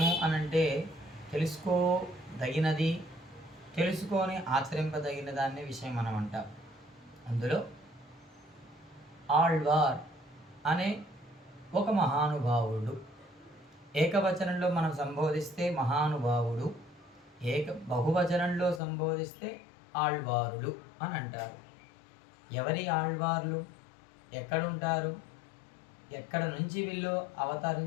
అనంటే తెలుసుకోదగినది, తెలుసుకొని ఆచరింపదగిన దాన్ని విషయం మనం అంటాం. అందులో ఆళ్వార్ అనే ఒక మహానుభావుడు, ఏకవచనంలో మనం సంబోధిస్తే మహానుభావుడు, బహువచనంలో సంబోధిస్తే ఆళ్వారులు అని అంటారు. ఎవరి ఆళ్వార్లు, ఎక్కడుంటారు, ఎక్కడ నుంచి వీళ్ళు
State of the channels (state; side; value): drops out; right; at 18.8 s